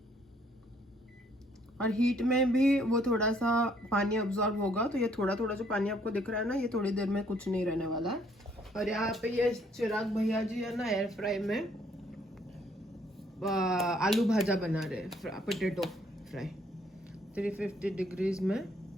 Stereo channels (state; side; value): normal; both; correlation 0.66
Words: और हीट में भी वो थोड़ा सा पानी अब्जॉर्ब होगा। तो ये थोड़ा थोड़ा जो पानी आपको दिख रहा है ना, ये थोड़ी देर में कुछ नहीं रहने वाला है। और यहाँ पे ये चिराग भैया जी है ना, एयर फ्राई में आलू भाजा बना रहे, पोटैटो फ्राई 350 डिग्रीज में।